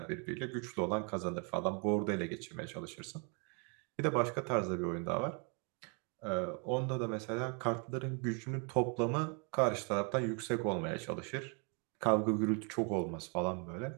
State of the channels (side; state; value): left; quieter; 36.1 dB